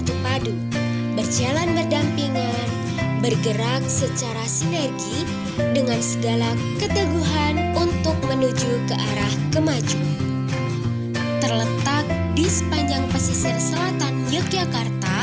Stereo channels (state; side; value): identical; both; correlation 1.00